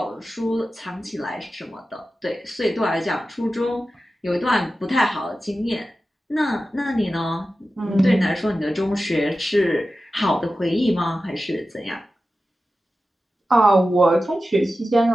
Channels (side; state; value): both; normal; correlation 0.93